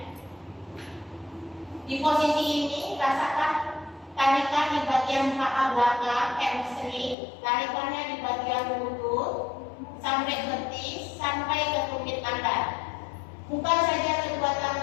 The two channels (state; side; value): drops out; right; at 7.2 s